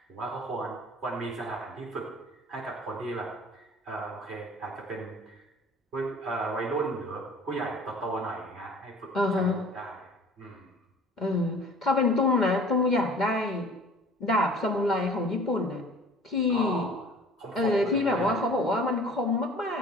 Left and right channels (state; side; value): normal; both; correlation 0.47